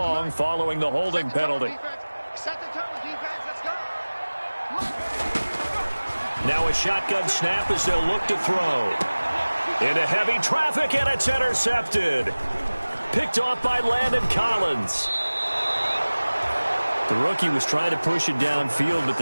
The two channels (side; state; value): both; inverted; correlation -1.00